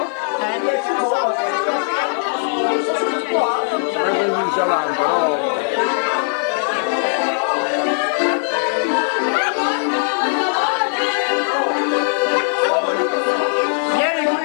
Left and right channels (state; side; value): silent; right; digital silence